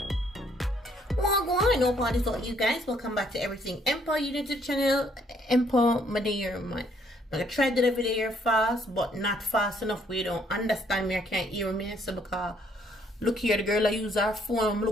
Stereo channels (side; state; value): both; normal; correlation 0.67